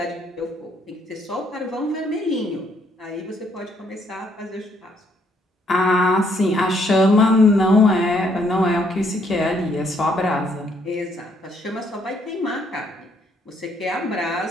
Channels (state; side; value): normal; both; correlation 0.69